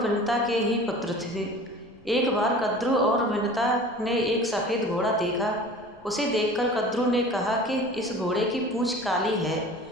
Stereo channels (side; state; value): left; noise; rumble, 29 dB below the sound